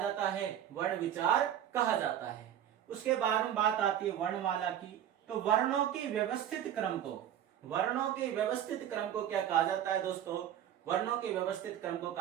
है? वर्ण विचार कहा जाता है। उसके बाद में बात आती है वर्णमाला की। तो वर्णों के व्यवस्थित क्रम को क्या कहा जाता है दोस्तों? वर्णों के व्यवस्थित क्रम को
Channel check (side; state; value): left; quieter; 10.6 dB